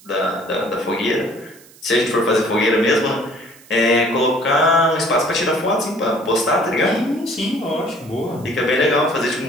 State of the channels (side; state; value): right; noise; hiss, 25 dB below the sound